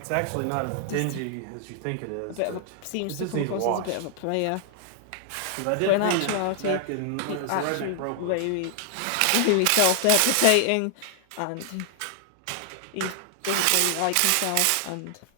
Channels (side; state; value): both; different; correlation 0.00